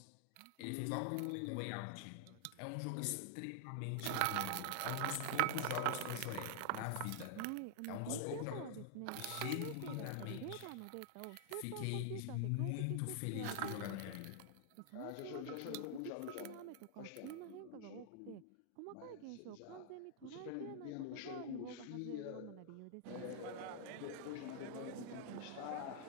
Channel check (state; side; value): different; both; correlation -0.01